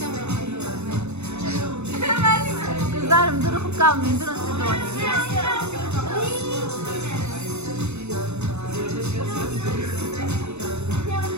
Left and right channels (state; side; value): late; left; 0.81 ms